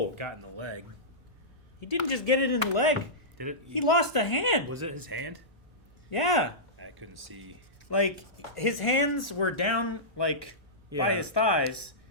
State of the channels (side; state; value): both; normal; correlation -0.15